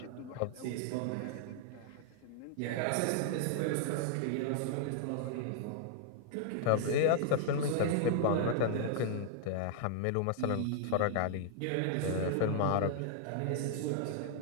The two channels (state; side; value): different; both; correlation -0.01